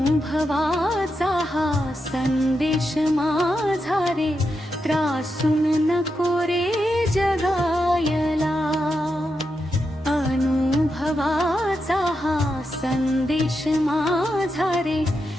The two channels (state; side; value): normal; both; correlation 0.86